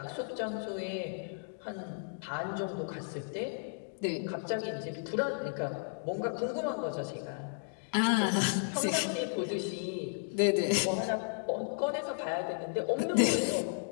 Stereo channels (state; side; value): silent; right; digital silence